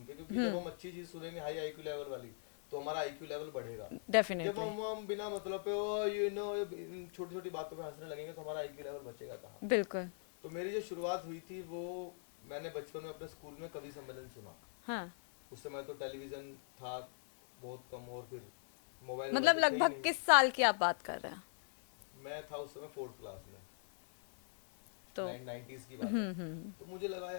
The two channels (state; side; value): silent; right; 51 dB below the other